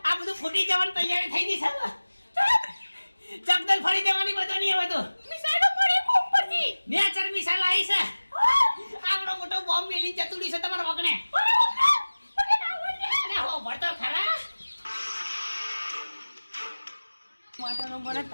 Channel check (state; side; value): inverted; both; correlation -1.00